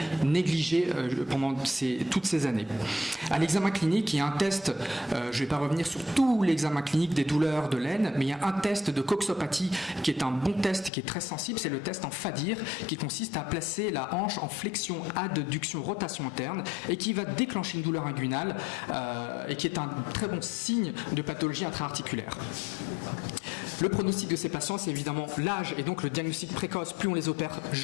négligée pendant toutes ces années. À l'examen clinique, il y a un test, je ne vais pas revenir sur tout l'examen clinique des douleurs de l'aine, mais il y a un test de coxopathie qui est un bon test, qui est très sensible, c'est le test en FADIR, qui consiste à placer la hanche en flexion, adduction, rotation interne, et qui va déclencher une douleur inguinale, et qui est un très bon signe de pathologie intra-articulaire. Le pronostic de ces patients, c'est évidemment l'âge et donc le diagnostic précoce. Plus on les opère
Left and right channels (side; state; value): right; drops out; at 10.9 s